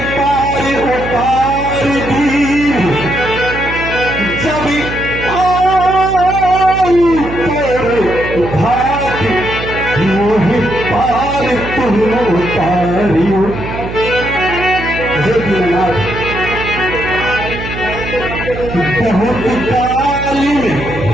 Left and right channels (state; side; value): noise; right; hum, 8 dB below the sound